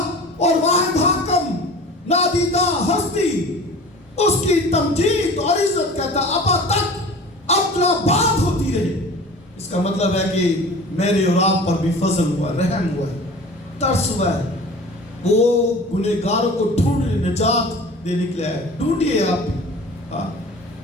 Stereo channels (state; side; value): normal; both; correlation 0.41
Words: اور واحد حاکم نادیدہ ہستی اس کی تمجید اور عزت کہتا اب تک اپنا بات ہوتی رہے. اس کا مطلب ہے کہ میرے اور آپ پر بھی فضل ہوا، رحم ہوا ہے، ترس ہوا ہے. وہ گنہگاروں کو ڈھونڈنے نجات دینے کے لیے ہے. ڈھونڈیے آپ بھی.